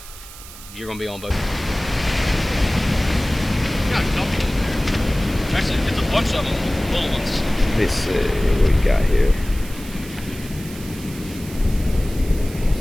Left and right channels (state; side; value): noise; right; hiss, 16 dB below the sound